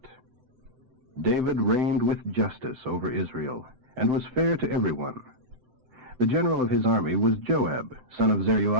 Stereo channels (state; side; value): late; left; 7.8 ms